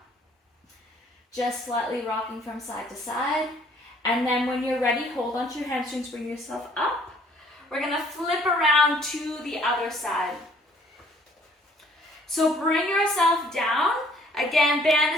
Just slightly rocking from side to side. And then when you're ready, hold onto your hamstrings. Bring yourself up. We're going to flip around to the other side. So bring yourself down. Again, band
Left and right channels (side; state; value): both; normal; correlation 0.60